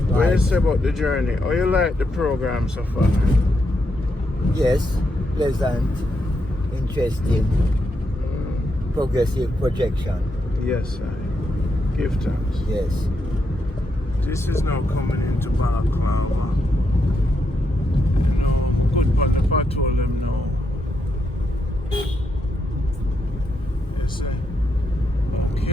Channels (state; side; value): normal; both; correlation 0.81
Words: say about the journey? How you like the program so far? Yes, pleasant, interesting, progressive projection. Yes, sir. Give thanks. Yes. This is now coming into Balaclava. You know, good but if I told them no. Yes, sir.